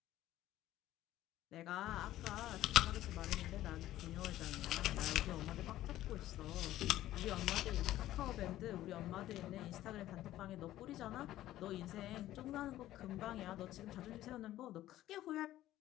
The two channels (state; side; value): quieter; right; 14.2 dB